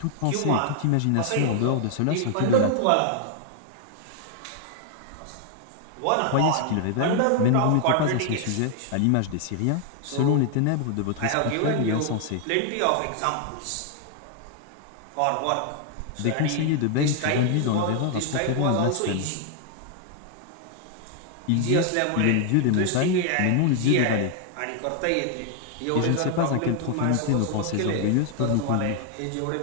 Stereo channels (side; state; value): both; different; correlation 0.00